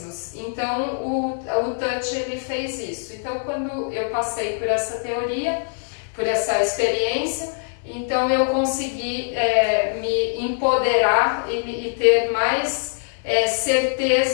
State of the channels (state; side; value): silent; right; 64 dB below the other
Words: Então o Touch ele fez isso. Então quando eu passei por essa teoria, por essa experiência, então eu consegui me empoderar e ter mais